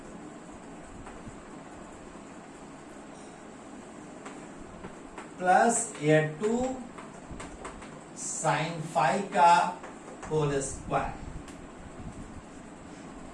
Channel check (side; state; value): both; identical; correlation 1.00